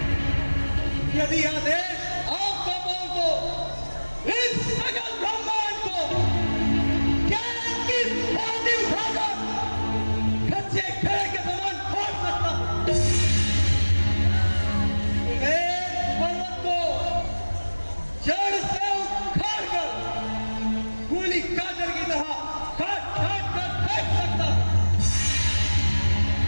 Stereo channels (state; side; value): inverted; both; correlation -1.00